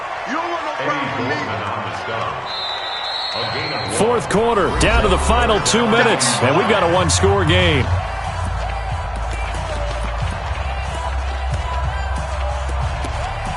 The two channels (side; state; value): both; identical; correlation 1.00